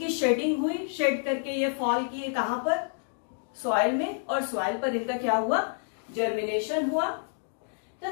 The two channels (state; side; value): silent; right; digital silence